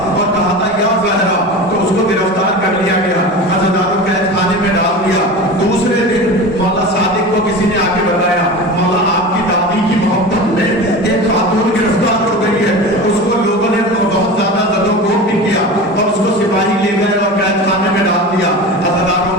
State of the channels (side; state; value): both; normal; correlation 0.31